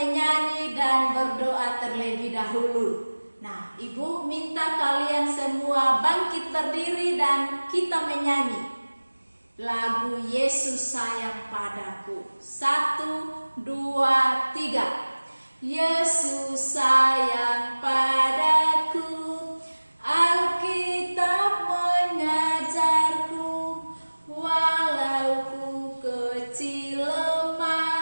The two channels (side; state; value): both; inverted; correlation -1.00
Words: dan berdoa terlebih dahulu. Nah, Ibu minta kalian semua bangkit berdiri dan kita menyanyi lagu Yesus sayang padaku. 1, 2, 3. Yesus sayang padaku, Alkitab mengajarku, walau ku kecil